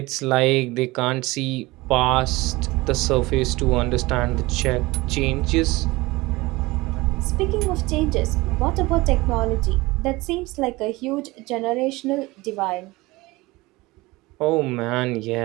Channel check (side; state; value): left; quieter; 21.3 dB